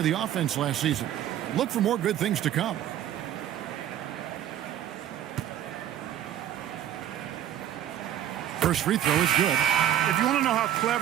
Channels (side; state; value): left; quieter; 11.3 dB